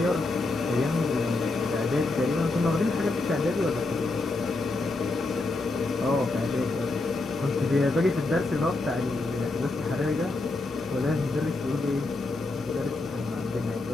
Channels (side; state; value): right; quieter; 3.2 dB